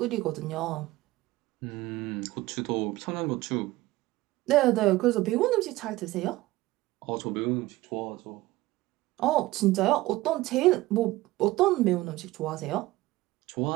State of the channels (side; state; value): left; quieter; 18.3 dB